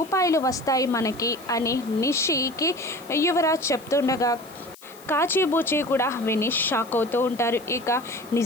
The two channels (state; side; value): noise; left; hiss, 22 dB below the sound